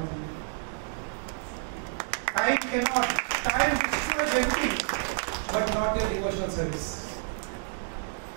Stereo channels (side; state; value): left; silent; digital silence